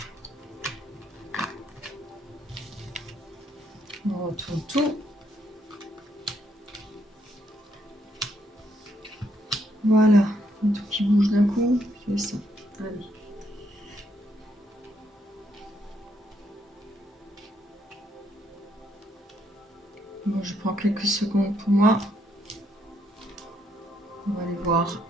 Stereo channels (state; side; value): normal; both; correlation 0.74